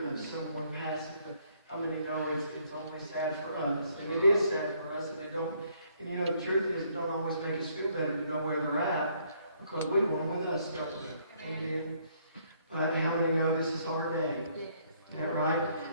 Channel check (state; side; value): inverted; both; correlation -0.67